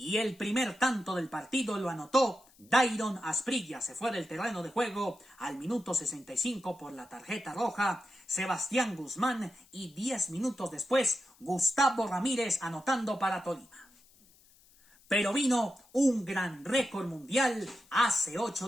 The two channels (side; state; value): left; noise; hiss, 28 dB below the sound